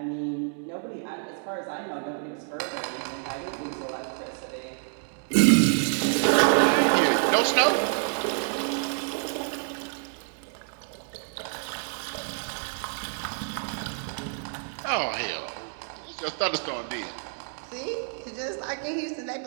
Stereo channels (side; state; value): left; silent; 59 dB below the other